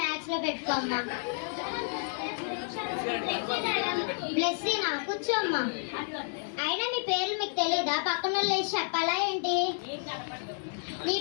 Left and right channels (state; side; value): silent; right; 57 dB below the other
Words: మ్యాథ్స్ లో పెట్టుకో అమ్మా. బ్లెస్సీనా? కూర్చోమ్మా. అయినా మీ పేర్లు మీకు తెలీదా? పక్కన వాళ్ళు లేచి చెప్పాలా ఏంటి? నీ